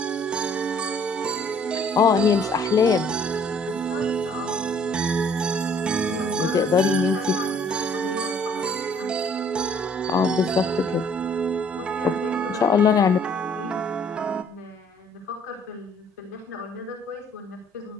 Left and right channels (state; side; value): normal; both; correlation 0.59